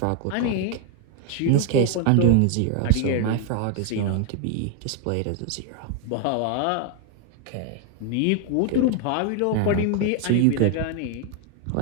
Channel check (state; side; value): different; both; correlation 0.01